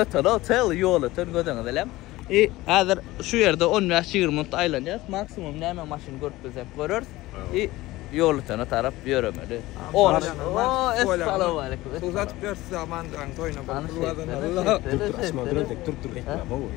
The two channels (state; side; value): quieter; right; 18.3 dB